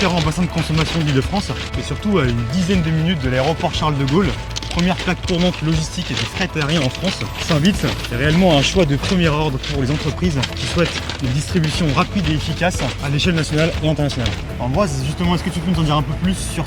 bassins de consommation de l'Île-de-France et surtout à une dizaine de minutes de l'aéroport Charles de Gaulle. Première plaque tournante logistique et de fret aérien en France. Saint-Vitz est réellement un choix de premier ordre pour les entreprises qui souhaitent une distribution rapide et efficace à l'échelle nationale et internationale. Ambroise, justement, est-ce que tu peux nous en dire un peu plus sur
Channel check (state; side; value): identical; both; correlation 1.00